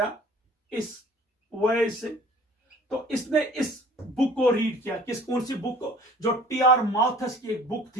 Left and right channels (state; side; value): normal; both; correlation 0.50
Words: इस वजह से, तो इसने इस बुक को रीड किया। कौन सी बुक को? जो TR माल्थस की एक बुक